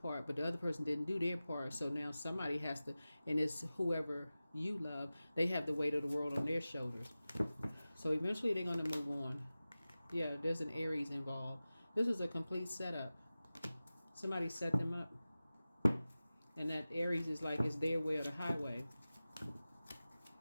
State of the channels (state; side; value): inverted; both; correlation -0.96